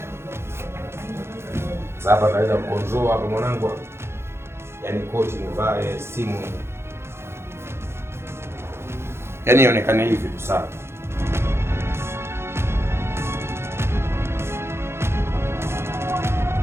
Sasa naweza kukonzoa hapa mwanangu. Yaani koti nivae, simu. Yaani ionekane hivi tu sawa.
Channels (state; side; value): late; left; 0.12 ms